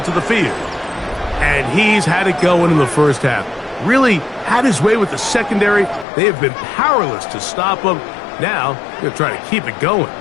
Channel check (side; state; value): right; drops out; at 6.1 s